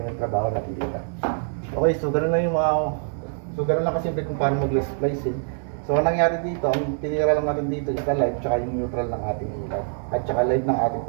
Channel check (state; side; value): silent; left; digital silence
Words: yung trabaho natin dito. Okay, so ganoon lang yung ganoon lang kasi kung paano mag-splicing. So, ang nangyari dito, ang tinira lang natin dito is live tsaka yung neutral ng ating ilaw. At tsaka live ng ating